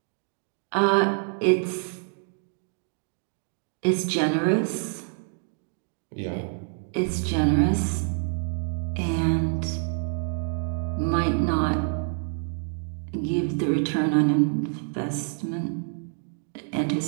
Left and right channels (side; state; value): left; silent; 59 dB below the other